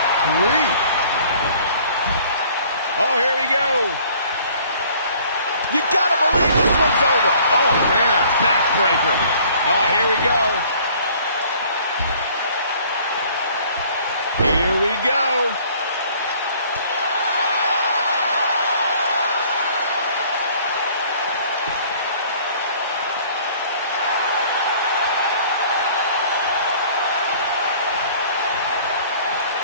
grief. Oh, here we go. You gotta believe this one's over. Oh, man. Backbreaker. Oh, here we go. Here we go.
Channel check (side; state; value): both; inverted; correlation -0.54